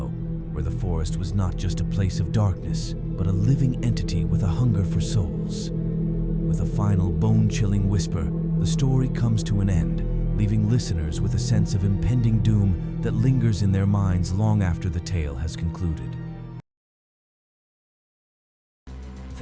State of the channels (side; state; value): both; identical; correlation 1.00